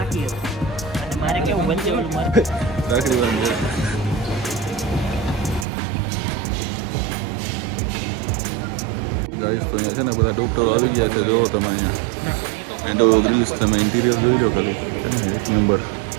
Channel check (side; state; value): left; drops out; at 5.7 s